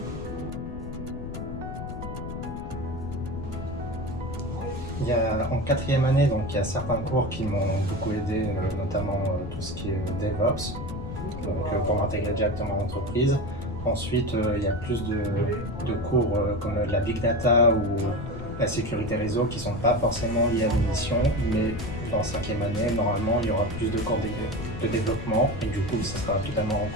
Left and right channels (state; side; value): noise; left; rumble, 9 dB below the sound